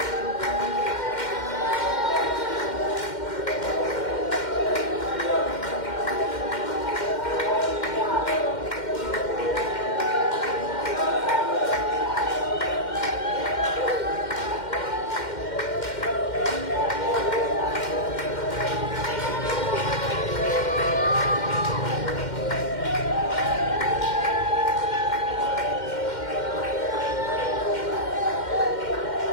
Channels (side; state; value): right; late; 2.1 ms